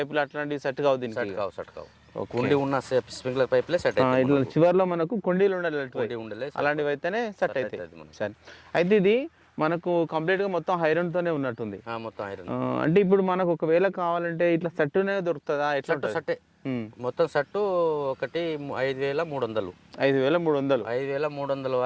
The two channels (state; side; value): identical; both; correlation 1.00